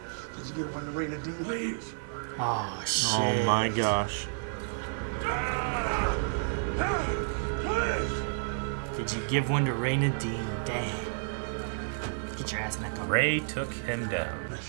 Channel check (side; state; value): left; silent; digital silence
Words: Did you get when the rain of Dean leaves? Oh shit. Oh my gosh. Please! Did you give one to Raina Dean? Damn. Get your ass in that car. Ray took him down. I